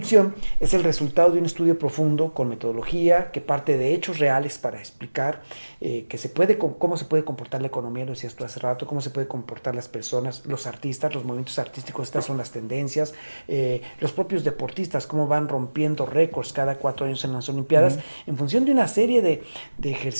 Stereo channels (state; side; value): inverted; both; correlation -1.00